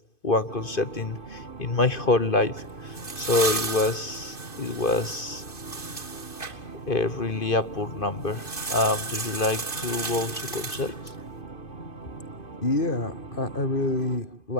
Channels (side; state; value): right; late; 2.5 ms